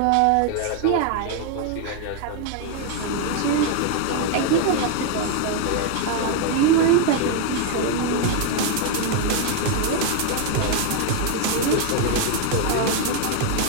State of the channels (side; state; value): both; different; correlation 0.00